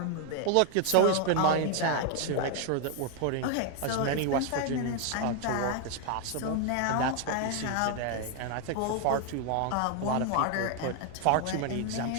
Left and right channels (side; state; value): both; different; correlation 0.01